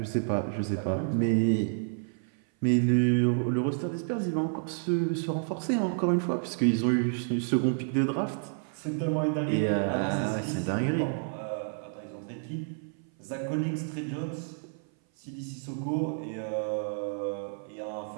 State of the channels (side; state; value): left; silent; 56 dB below the other